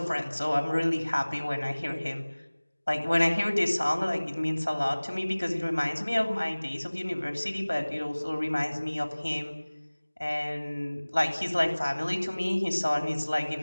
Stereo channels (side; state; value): both; inverted; correlation -1.00